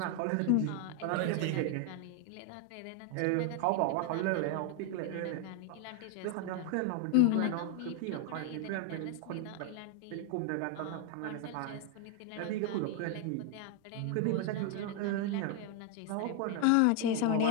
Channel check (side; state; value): both; different; correlation 0.00